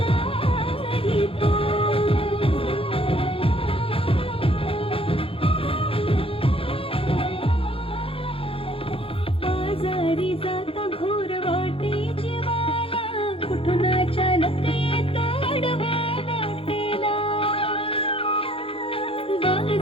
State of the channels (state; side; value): late; right; 0.27 ms